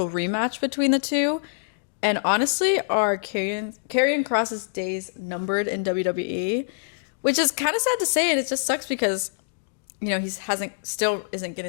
rematch between the two? And honestly, are Karrion Kross's days numbered in WWE? Which is kind of sad to say, and it just sucks because, you know, still isn't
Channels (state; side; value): quieter; right; 39.7 dB